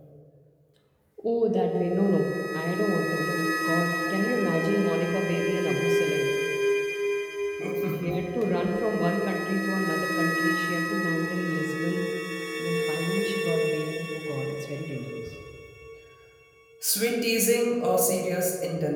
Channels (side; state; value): both; identical; correlation 1.00